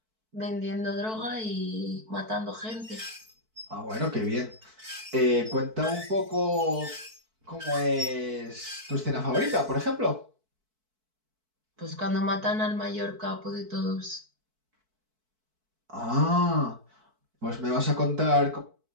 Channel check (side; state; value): left; late; 4.6 ms